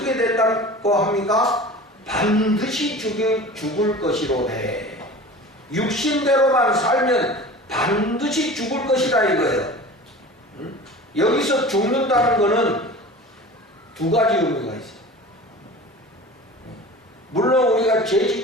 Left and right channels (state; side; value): normal; both; correlation 0.38